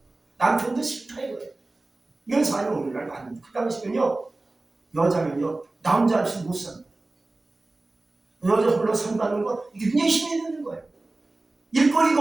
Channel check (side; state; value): left; quieter; 3.0 dB